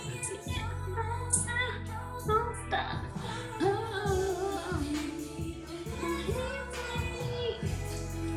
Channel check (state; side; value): identical; both; correlation 1.00